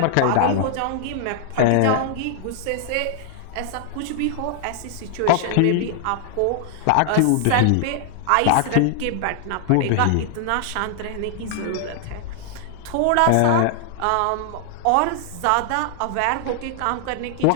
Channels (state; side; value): different; both; correlation -0.01